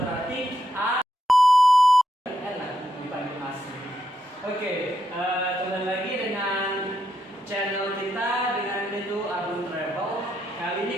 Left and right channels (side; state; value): both; normal; correlation 0.81